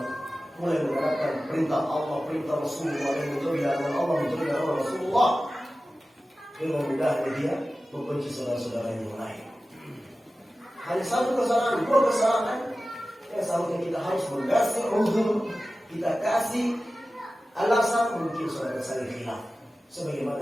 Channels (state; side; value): normal; both; correlation 0.95